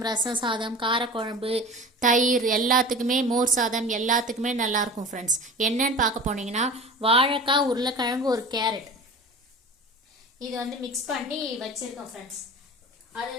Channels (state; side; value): normal; both; correlation 0.36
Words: ரசம் சாதம், காரக்குழம்பு, தயிர் எல்லாத்துக்குமே, மோர் சாதம் எல்லாத்துக்குமே நல்லாயிருக்கும் ஃப்ரெண்ட்ஸ். என்னன்னு பார்க்க போனீங்கன்னா வாழைக்காய், உருளைக்கிழங்கு, ஒரு கேரட் இது வந்து மிக்ஸ் பண்ணி வச்சுருக்கோம் ஃப்ரெண்ட்ஸ்.